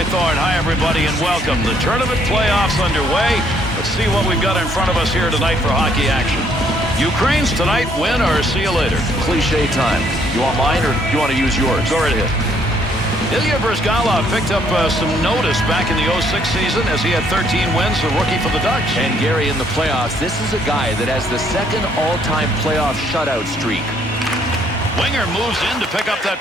Thorne. Hi, everybody, and welcome. The tournament playoffs underway. Let's see what we've got in front of us here tonight for hockey action. Ukraine's tonight, win or see you later. Cliche time. You want mine or you want to use yours? Go right ahead. Ilya Bryzgalov picked up some notice back in the 06 season as he had 13 wins, the rookie for the Ducks. And Gary, in the playoffs, this is a guy that has the second all-time playoff shutout streak. Winger moves in to pick up that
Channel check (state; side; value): normal; both; correlation 0.67